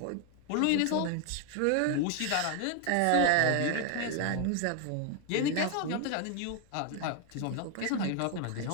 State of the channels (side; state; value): both; different; correlation 0.00